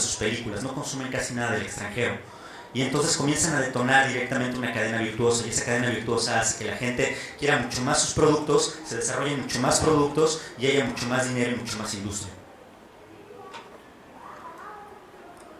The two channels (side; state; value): both; identical; correlation 1.00